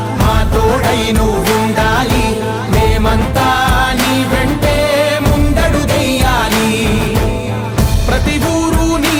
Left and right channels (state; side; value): identical; both; correlation 1.00